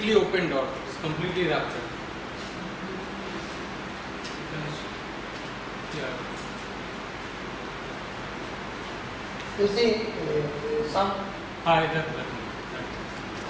opened or it is completely ruptured. Yeah. You see, some. That.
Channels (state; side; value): identical; both; correlation 1.00